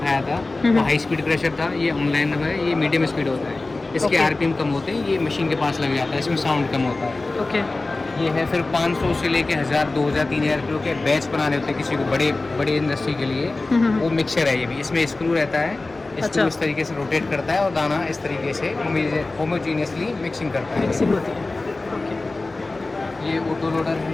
था, वो हाई स्पीड प्रेशर था। ये ऑनलाइन है, ये मीडियम स्पीड होता है। इसके Okay. आरपीएम कम होते हैं, ये मशीन के पास लग जाता है, इसमें साउंड कम होता है। Okay. ये है फिर 500 से लेके 1000, 2000, 3000 किलो के बैच बनाने होते हैं किसी को बड़े इंडस्ट्री के लिए। वो मिक्सर है ये भी। इसमें स्क्रू रहता है, अच्छा। स्क्रू इस तरीके से रोटेट करता है और दाना इस तरीके से होमोजीनियसली मिक्सिंग करता है। Mixing होती है. ये ऑटो लोडर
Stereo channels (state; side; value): quieter; right; 3.2 dB